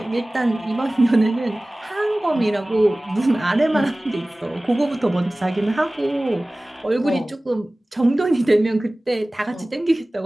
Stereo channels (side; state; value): both; normal; correlation 0.98